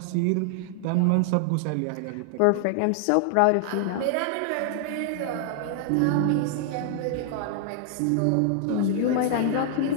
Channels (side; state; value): both; different; correlation 0.00